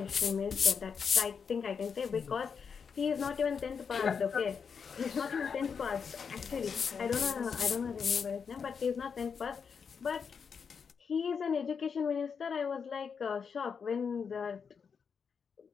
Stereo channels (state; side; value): quieter; right; 6.2 dB